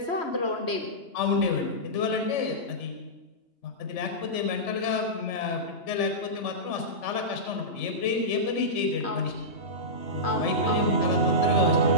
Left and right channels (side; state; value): right; late; 3.4 ms